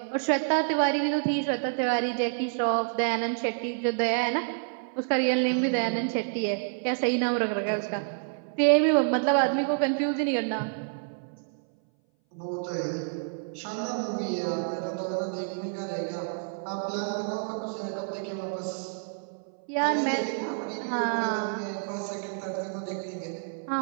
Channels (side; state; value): left; silent; 58 dB below the other